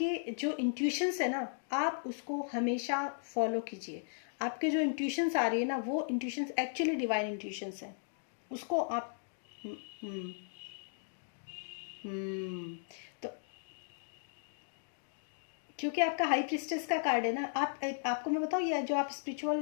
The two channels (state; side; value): silent; right; digital silence